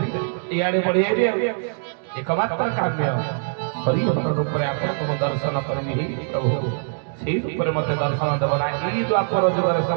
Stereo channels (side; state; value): left; silent; digital silence